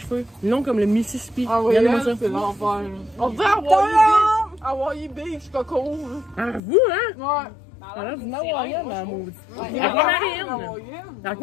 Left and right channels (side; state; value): right; drops out; at 6.6 s